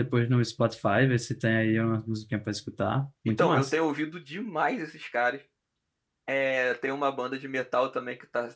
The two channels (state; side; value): identical; both; correlation 1.00